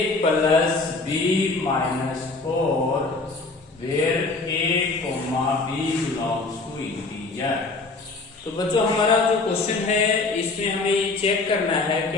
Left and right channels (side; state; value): right; quieter; 3.6 dB